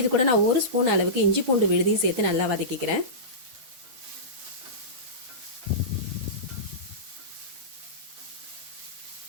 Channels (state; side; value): late; left; 8.4 ms